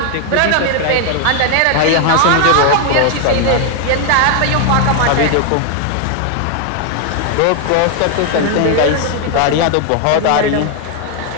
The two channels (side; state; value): both; different; correlation 0.01